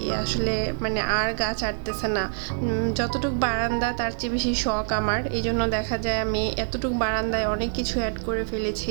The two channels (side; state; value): left; silent; digital silence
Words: আসলে মানে আর গাছ আটতেছে না। যতটুক বারান্দা তার চেয়ে বেশি শখ আমার, এই জন্য দেখা যায় আমি এতটুক বারান্দায় অনেক কিছু অ্যাড করে